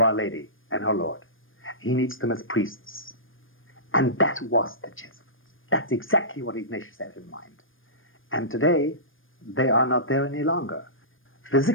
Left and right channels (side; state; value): right; late; 0.59 ms